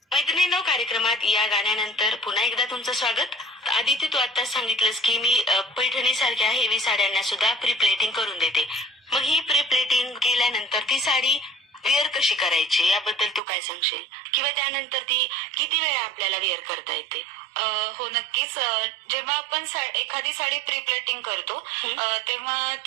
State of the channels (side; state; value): left; drops out; at 13.4 s